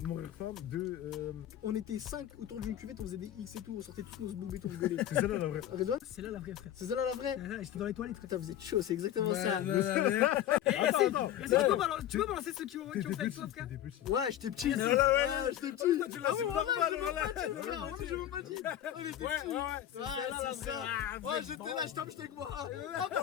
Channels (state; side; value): quieter; right; 11.6 dB